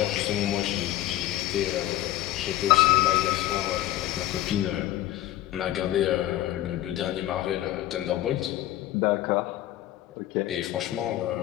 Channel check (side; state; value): right; quieter; 14.4 dB